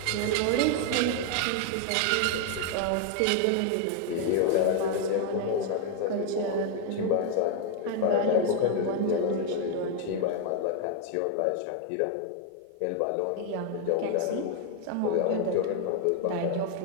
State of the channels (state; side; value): different; both; correlation 0.00